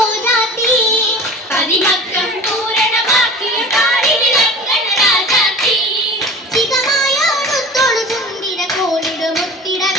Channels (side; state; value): both; normal; correlation 0.38